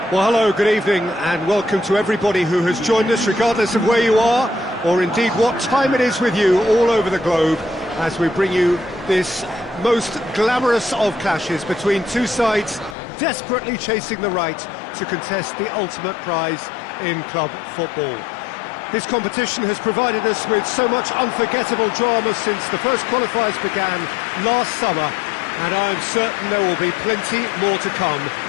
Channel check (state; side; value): drops out; right; at 13.0 s